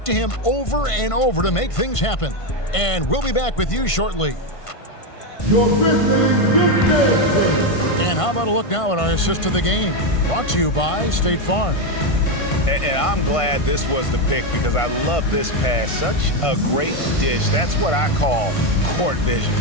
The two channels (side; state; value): right; late; 1.5 ms